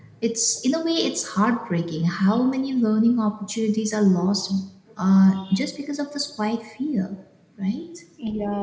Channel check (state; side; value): identical; both; correlation 1.00